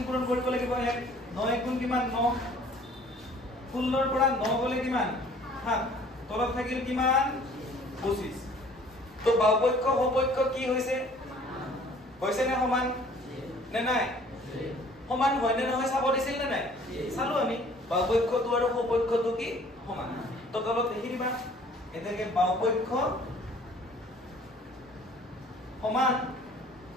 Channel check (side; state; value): both; normal; correlation 0.53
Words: পূৰণ কৰিব লাগিব 1 9 গুণ কিমান 9 16 ৰ পৰা 9 গলে কিমান 7 তলত থাকিল কিমান 25 তো বাহুপক্ষ সপক্ষ কি হৈছে নে সমান নে নাই সমান হয় নে নহয় চাব দিছিল নে নাই চালো আমি বাহুপক্ষটো আৰু সপক্ষটো কি সমান তো তলত লিখি দিবা এটাকে বাহুপক্ষ সমান